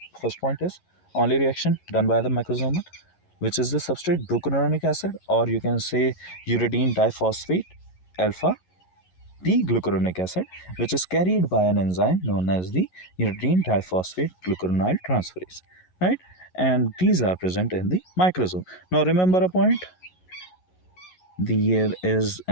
first point is only reaction done by the microsomal, which is the substrate glucuronic acid, or you can say uridine diphosphate alpha the glucuronic acid, which is carried by an enzyme known as the uridine diphosphate glucuronide transferase, right? And these are present in the microsome. Now remember a point: there is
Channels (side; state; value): right; late; 11 ms